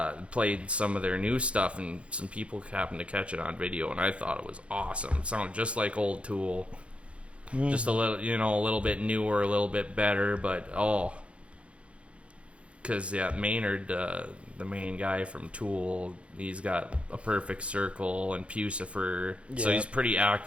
played some of their new stuff, and some people happened to catch it on video, and I thought it was awesome. It sounded just like old Tool. just a little, a little bit newer, a little bit better. But because Maynard, the main guy from Tool, he's got a Perfect Circle and Pucifer, so he's pretty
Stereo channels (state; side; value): late; left; 0.061 ms